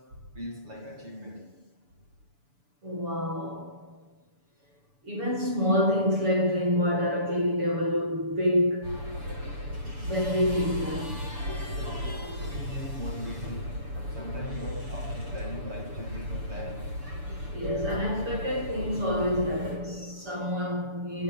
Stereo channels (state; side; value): late; left; 6.9 ms